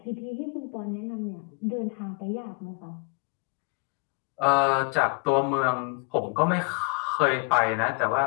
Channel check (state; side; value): quieter; right; 32.7 dB